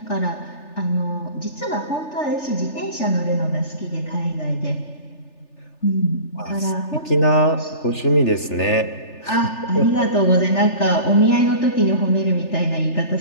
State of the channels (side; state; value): right; late; 3.4 ms